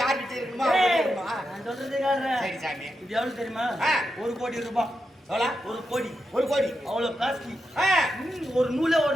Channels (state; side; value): normal; both; correlation 0.87